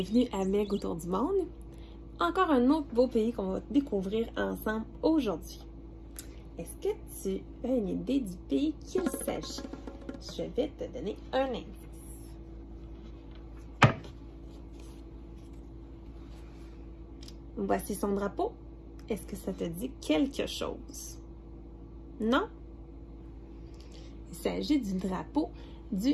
à Meg autour du monde. Encore un autre beau pays qu'on va découvrir ensemble aujourd'hui. Est-ce que tu as une idée du pays qu'il s'agit? Je vais te donner un indice. Voici son drapeau. Est-ce que ça te dit quelque chose? Non? Il s'agit du drapeau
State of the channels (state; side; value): identical; both; correlation 1.00